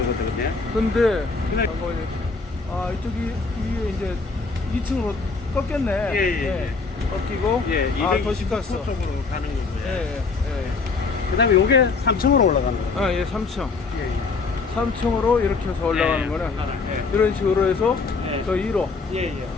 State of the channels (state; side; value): quieter; right; 4.3 dB